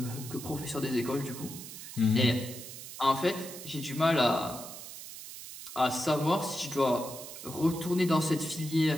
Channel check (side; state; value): right; noise; hiss, 12 dB below the sound